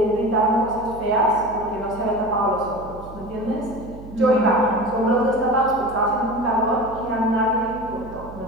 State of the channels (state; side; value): noise; right; hum, 16 dB below the sound